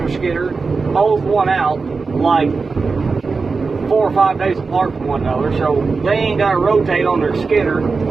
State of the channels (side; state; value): left; quieter; 4.4 dB